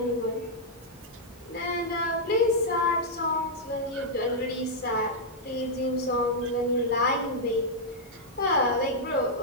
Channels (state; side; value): normal; both; correlation -0.06